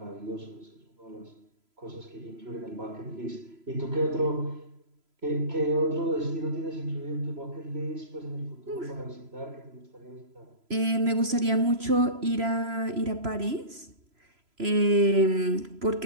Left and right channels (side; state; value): left; late; 3.0 ms